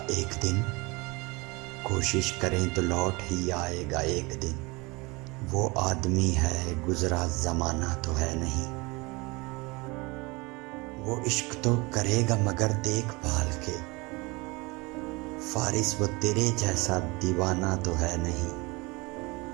ایک دن، کوشش کریں تو لوٹ ہی آئے گا ایک دن، وہ آدمی ہے گزرا زمانہ تو ہے نہیں، وہ عشق تو کرے گا مگر دیکھ بھال کے، فارس وہ تیرے جیسا دیوانہ تو ہے نہیں،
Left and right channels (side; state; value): left; quieter; 25.4 dB